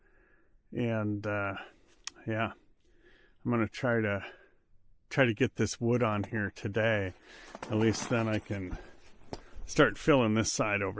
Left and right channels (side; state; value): both; identical; correlation 1.00